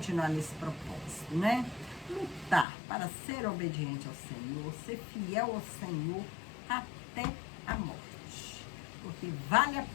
nesse propósito, né? Lutar para ser obediente ao Senhor, ser fiel ao Senhor até a morte. Porque vale a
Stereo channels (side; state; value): right; drops out; at 2.7 s